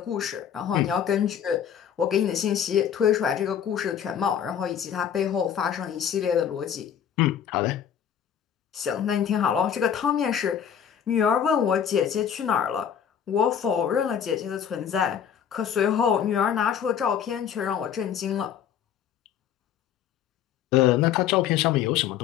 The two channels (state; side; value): quieter; right; 8.7 dB